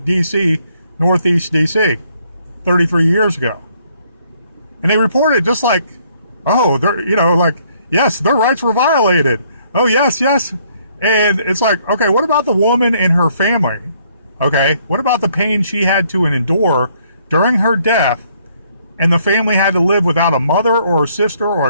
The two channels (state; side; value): inverted; both; correlation -0.67